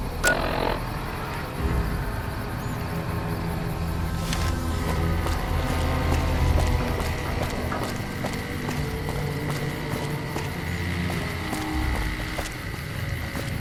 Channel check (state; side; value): identical; both; correlation 1.00